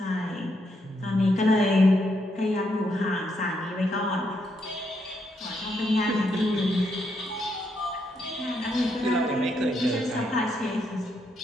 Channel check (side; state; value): both; normal; correlation 0.78